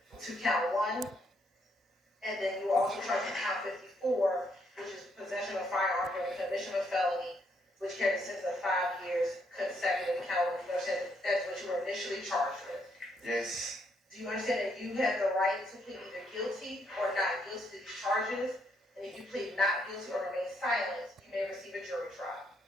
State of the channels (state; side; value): normal; both; correlation 0.73